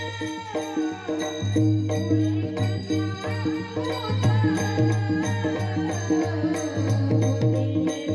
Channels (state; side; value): identical; both; correlation 1.00